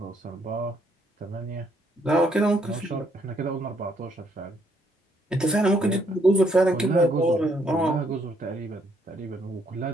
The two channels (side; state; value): both; normal; correlation 0.70